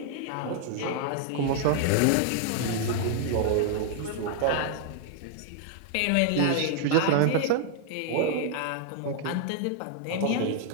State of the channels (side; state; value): both; different; correlation 0.00